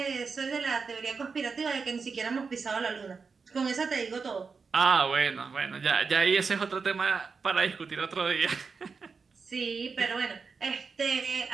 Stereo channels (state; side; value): quieter; left; 5.0 dB